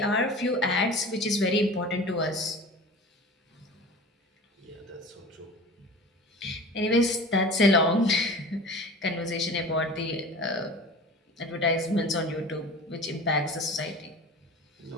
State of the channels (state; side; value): normal; both; correlation 0.37